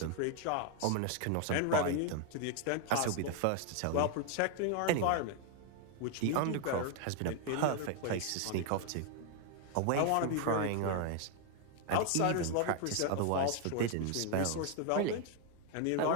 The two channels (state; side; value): different; both; correlation 0.01